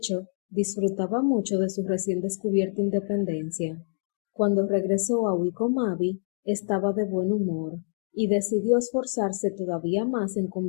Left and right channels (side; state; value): right; silent; digital silence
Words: disfrutaba mucho de su recién descubierta independencia. Cuando regresó a Wycombe Abbey, estaba de buen humor y decidió esforzarse todavía más en